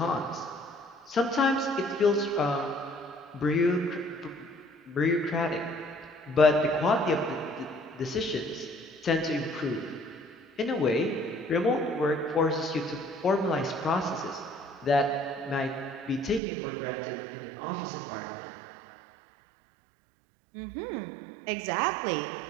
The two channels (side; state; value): left; drops out; at 16.4 s